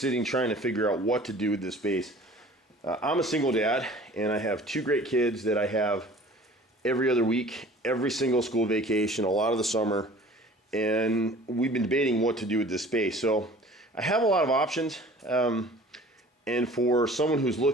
trying to figure out what to do with this space. I'm a single dad, and I have 2 great kids that I have every other week, every single school vacation, a lot of the summer. And we've been debating what to do with this space. So I have a lot of options. And for someone who's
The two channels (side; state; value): both; normal; correlation 0.47